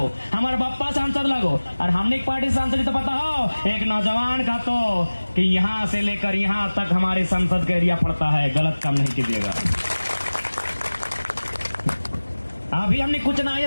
हमारे बप्पा सांसद लगो। और हमने पार्टी सांसद तो पता हो एक नौजवान का तो कि यहाँ से लेकर यहाँ तक हमारे संसद का एरिया पड़ता है, गलत काम नहीं कीजिएगा। अभी हमने कुछ ना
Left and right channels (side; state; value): both; inverted; correlation -1.00